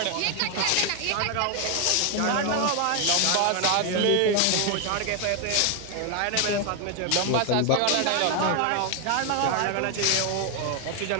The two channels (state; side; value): different; both; correlation 0.00